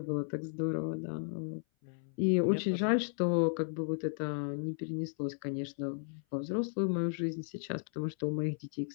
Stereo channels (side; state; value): right; silent; 55 dB below the other